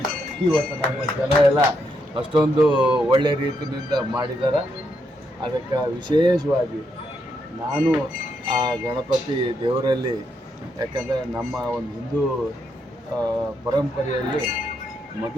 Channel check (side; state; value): both; normal; correlation 0.79